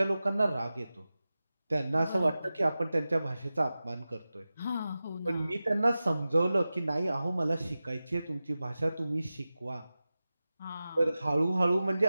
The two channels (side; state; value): both; inverted; correlation -0.95